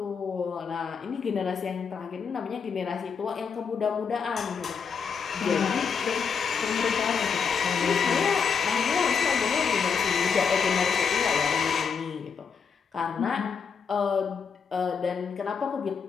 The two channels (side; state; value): right; quieter; 6.2 dB